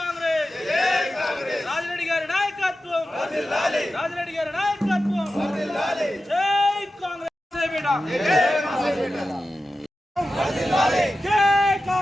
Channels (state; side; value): normal; both; correlation 0.93